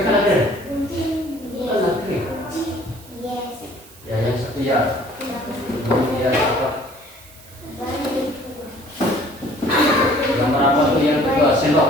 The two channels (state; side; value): noise; right; hiss, 22 dB below the sound